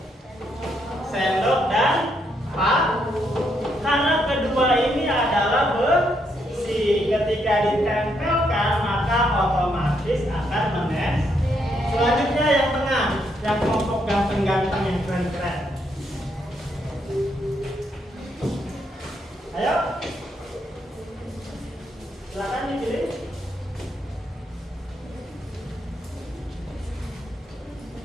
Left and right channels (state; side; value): normal; both; correlation 0.76